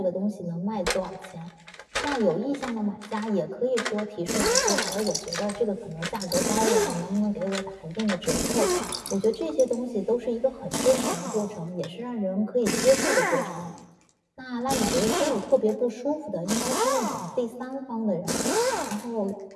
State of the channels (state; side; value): identical; both; correlation 1.00